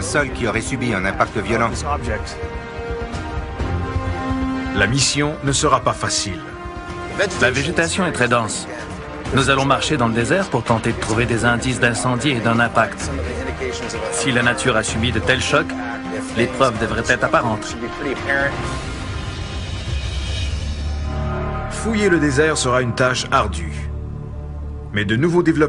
sol qui aurait subi un impact violent. La mission ne sera pas facile. La végétation est très dense. Nous allons marcher dans le désert pour tenter de trouver des indices d'incendie et d'un impact. Si la nature a subi de tels chocs, les preuves devraient être apparentes. Fouiller le désert sera une tâche ardue. Mais de nouveaux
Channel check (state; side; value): identical; both; correlation 1.00